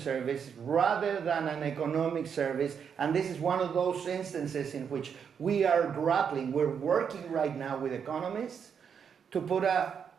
rather than an economic service. And this is one of those instances in which we are grappling. We're working right now with economists to put a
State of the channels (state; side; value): quieter; left; 7.2 dB